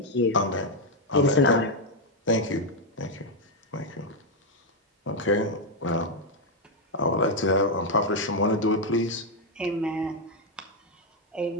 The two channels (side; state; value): both; normal; correlation 0.01